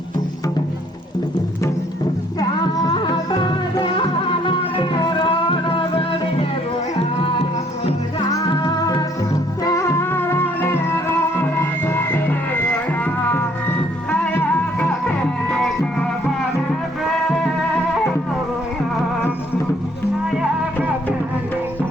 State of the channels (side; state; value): both; normal; correlation 0.64